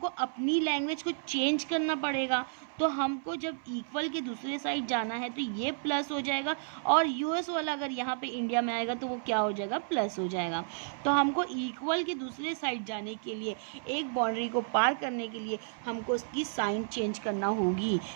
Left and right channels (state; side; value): silent; left; 57 dB below the other